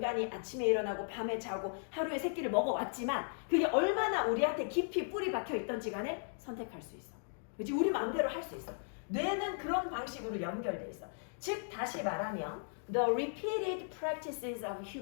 아침에 일어나고 밤에 자고 하루에 세 끼를 먹어왔지만 그게 얼마나 우리한테 깊이 뿌리 박혀 있던지 간에 선택할 수 있어. 그치? 우리 마음대로 할 수 있어. 뇌는 그런 방식으로 연결돼 있어. 즉 다시 말하면 the repeated practices of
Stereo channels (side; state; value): right; silent; digital silence